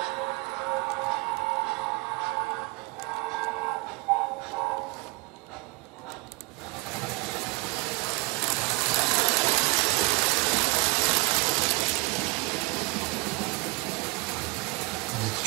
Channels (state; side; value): quieter; left; 24.9 dB